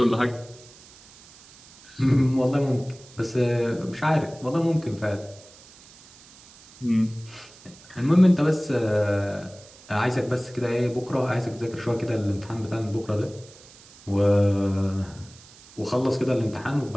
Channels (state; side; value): noise; right; hiss, 23 dB below the sound